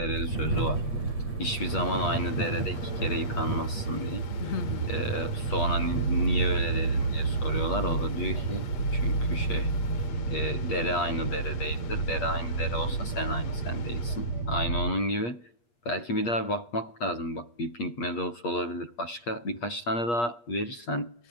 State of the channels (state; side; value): late; right; 8.4 ms